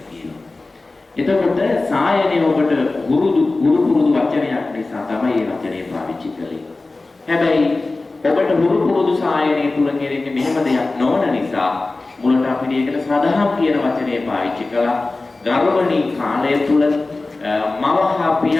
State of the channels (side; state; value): right; quieter; 3.3 dB